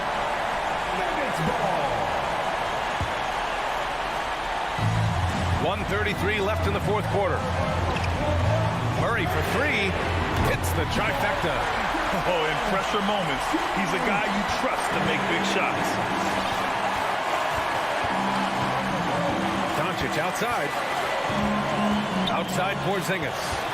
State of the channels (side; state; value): both; identical; correlation 1.00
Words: 1:33 left in the fourth quarter. Murray for 3. Hits the trifecta. Oh, in pressure moments, he's a guy you trust to make big shots. Doncic outside. Outside Porzingis.